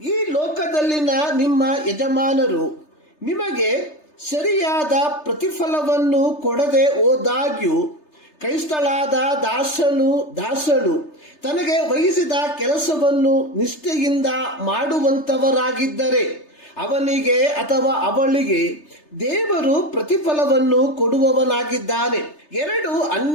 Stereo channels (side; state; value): right; late; 3.3 ms